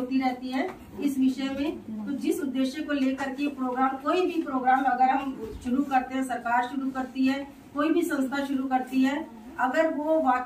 रहती है इस विषय में। तो जिस उद्देश्य को लेकर के प्रोग्राम, कोई भी प्रोग्राम अगर हम शुरू करते हैं, सरकार शुरू करती है, कोई भी संस्था शुरू करती है, अगर वो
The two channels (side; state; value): both; identical; correlation 1.00